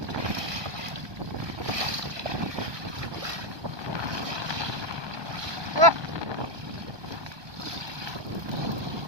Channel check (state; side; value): late; left; 1.2 ms